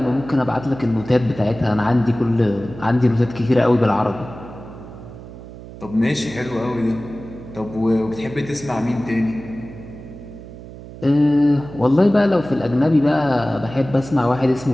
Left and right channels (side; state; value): right; noise; hum, 15 dB below the sound